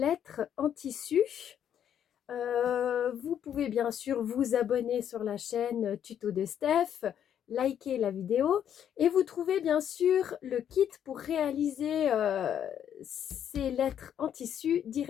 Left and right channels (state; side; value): quieter; right; 9.4 dB